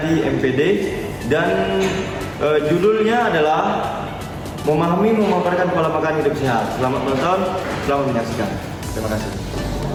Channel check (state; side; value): identical; both; correlation 1.00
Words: MPD dan judulnya adalah memahami memaparkan pola makan hidup sehat. Selamat menonton, selamat menyaksikan. Terima kasih.